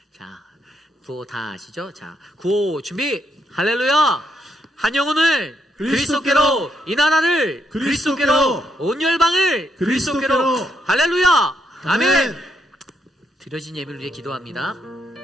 자 구호 다 아시죠? 자 구호 준비. 할렐루야. 한 영혼을 그리스도께로, 이 나라를 그리스도께로, 온 열방을 그리스도께로. 할렐루야. 아멘. 드려진 예배를 위해 기도합니다.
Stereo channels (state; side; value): normal; both; correlation 0.77